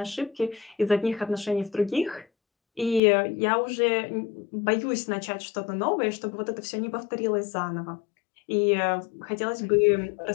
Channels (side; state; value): right; drops out; at 3.0 s